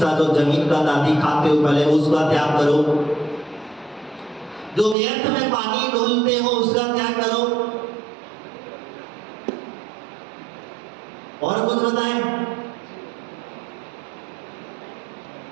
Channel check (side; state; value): left; drops out; at 5.0 s